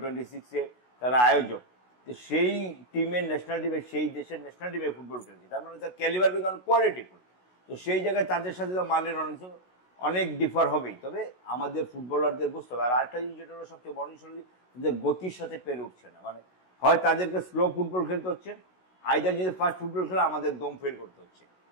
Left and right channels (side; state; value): right; late; 16 ms